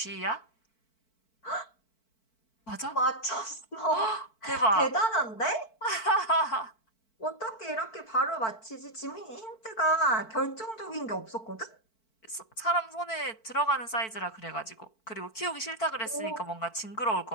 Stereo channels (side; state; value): right; late; 4.5 ms